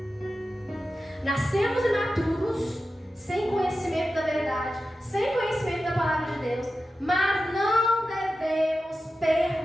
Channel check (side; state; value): both; normal; correlation 0.92